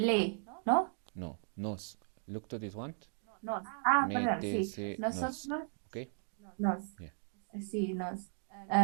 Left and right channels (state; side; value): silent; left; 54 dB below the other